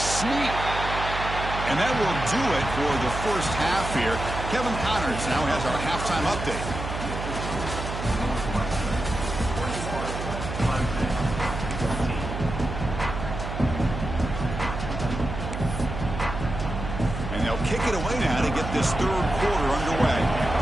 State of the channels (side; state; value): right; noise; hum, 6 dB below the sound